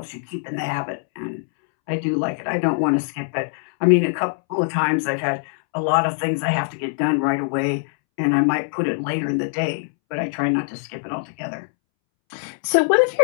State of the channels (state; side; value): silent; right; 63 dB below the other